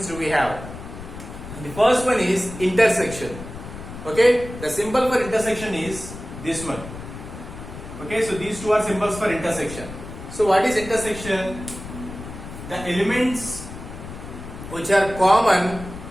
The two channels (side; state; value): left; noise; rumble, 12 dB below the sound